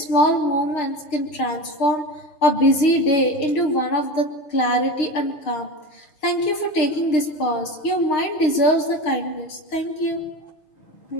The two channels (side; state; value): right; late; 6.5 ms